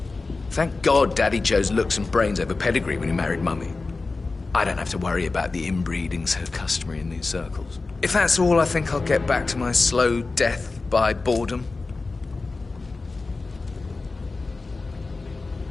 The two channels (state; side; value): quieter; right; 3.7 dB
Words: Thank God Daddy Joe's looks and brains over pedigree when he married Mummy. I don't have to worry about the inbreeding so customary in these circles. If that's all, I think I'll get back to my slow death by boredom.